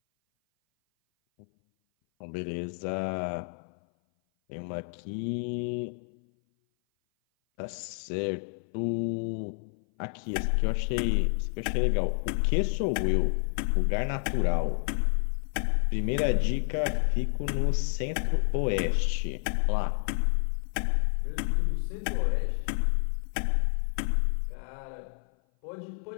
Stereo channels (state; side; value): silent; right; 57 dB below the other